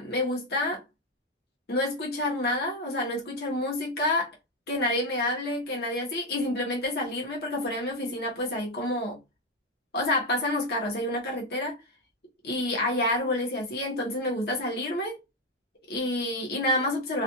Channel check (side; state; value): both; normal; correlation 0.07